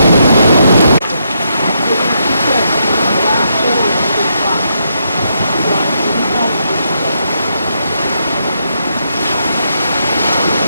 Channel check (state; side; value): inverted; both; correlation -0.79